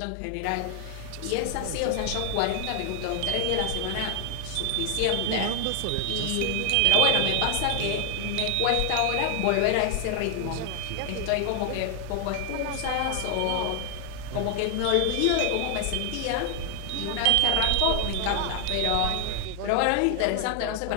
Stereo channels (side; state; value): both; different; correlation 0.00